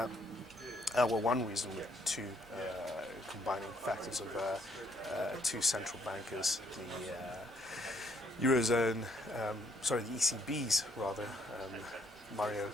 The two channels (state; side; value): normal; both; correlation 0.69